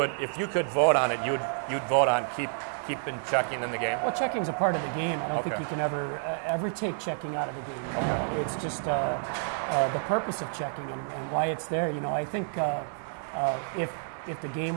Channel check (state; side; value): silent; left; digital silence